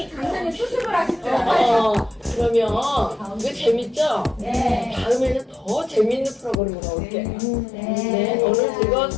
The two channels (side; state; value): right; drops out; at 6.6 s